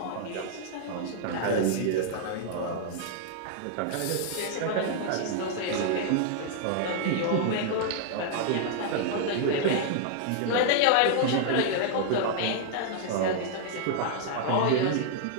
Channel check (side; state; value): both; different; correlation -0.01